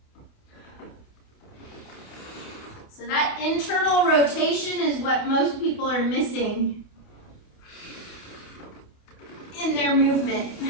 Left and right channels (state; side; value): late; right; 28 ms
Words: So that internal rotation is what most people are missing in their movement.